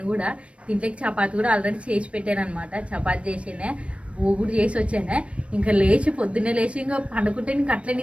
కూడా దీంట్లోకి చపాతి కూడా ఆల్రెడీ చేసి పెట్టాను అనమాట. చపాతి చేసినే ఊగుడు చేసి వచ్చానే. ఇంకా లేచి పొద్దున్నే లేచి ఇంకా పండుకుంటే ఇంకా అట్లే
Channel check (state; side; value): late; left; 0.061 ms